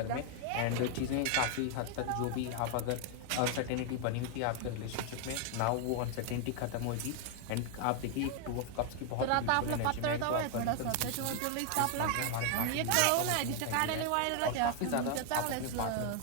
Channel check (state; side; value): different; both; correlation 0.00